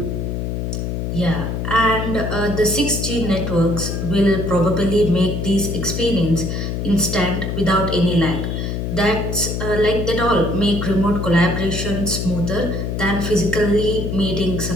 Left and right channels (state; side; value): noise; left; hum, 2 dB below the sound